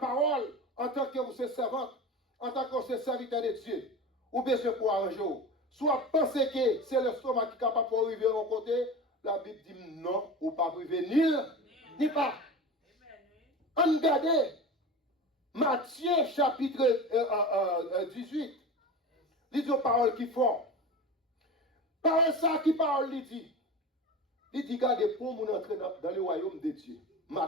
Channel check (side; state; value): both; normal; correlation 0.31